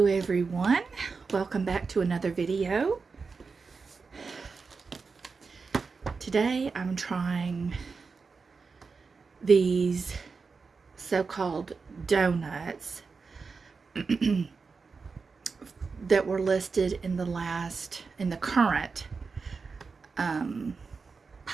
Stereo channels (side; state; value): left; quieter; 4.8 dB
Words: everyone, welcome back to another video. Today I'm trying these so-called donuts that were listed in the current